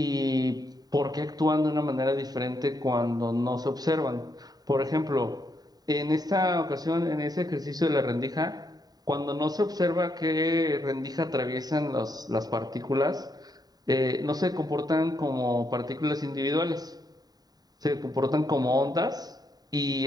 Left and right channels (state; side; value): late; left; 0.19 ms